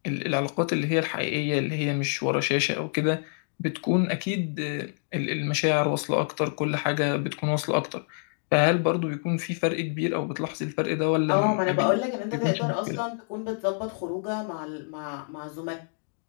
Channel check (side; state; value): right; silent; digital silence